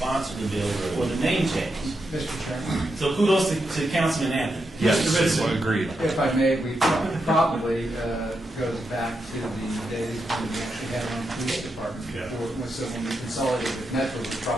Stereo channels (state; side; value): normal; both; correlation 0.85